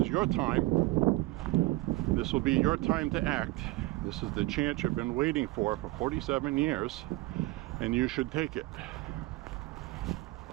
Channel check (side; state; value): left; quieter; 20.1 dB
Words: your time, this will be your time to act, this is the chance you've been waiting for 47 years, and you should take it.